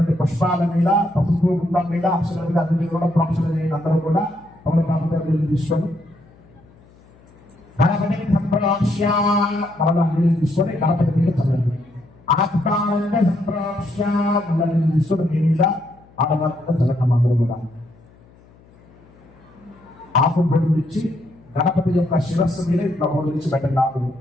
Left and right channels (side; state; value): left; noise; hum, 27 dB below the sound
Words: పుష్పాల మీద పసుపు గుండం మీద అక్షరాల మీద అన్ని కూడా ప్రొఫెషన్ అందరూ కూడా తమలపాకు తీసుకొని గణపతిని సంప్రోక్ష్య మరలా నీళ్ళు తీసుకొని గణపతి మీద చదవండి. ఆత్మానంద సంప్రోక్ష్య మళ్ళీ నీళ్ళు తీసుకొని మీ మీద ఆడవాళ్ళ చదవటం అందరూ కూడా ఆకు బొడుగు ఇచ్చి గణపతి యొక్క శిరస్సు మీద ఇట్లా బొడుగు ఇచ్చి పెట్టండి. ఆకులు